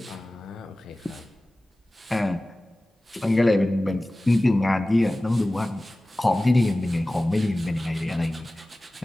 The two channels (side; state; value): both; normal; correlation 0.97